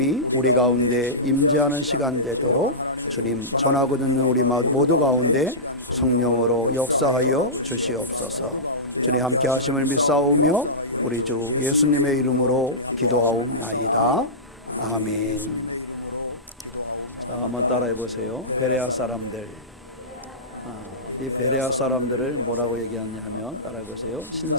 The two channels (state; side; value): normal; both; correlation -0.17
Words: 우리 가운데 임재하는 시간 되도록 주님 전하고 듣는 우리 모두 가운데 성령으로 역사하여 주시옵소서. 주님 함께 하심을 믿사오며 우리 주 예수님의 이름으로 기도하옵나이다. 아멘. 자, 한번 따라해 보세요. 베레아 사람들. 이 베레아 사람들을 뭐라고 얘기하냐 하면 따라해 보세요.